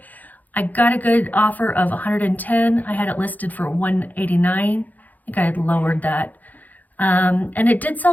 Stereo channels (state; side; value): late; right; 0.082 ms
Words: I got a good offer of 110. I had it listed for 189. I think I had lowered that. And it did